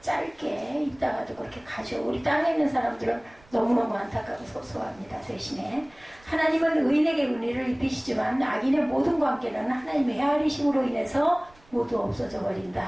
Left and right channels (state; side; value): noise; right; rumble, 27 dB below the sound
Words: 짧게 있다가도 그렇게 가죠. 우리 땅에 있는 사람들은 너무너무 안타깝고 섭섭합니다. 대신에 하나님은 의인에게 은혜를 입히시지만 악인의 모든 관계는 하나님의 헤아리심으로 인해서 모두 없어져